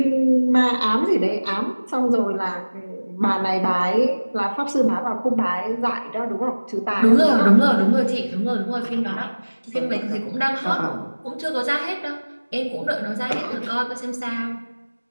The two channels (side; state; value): both; inverted; correlation -1.00